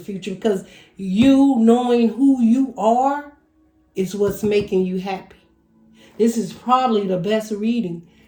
future, because you knowing who you are is what's making you happy. This is probably the best reading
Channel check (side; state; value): both; identical; correlation 1.00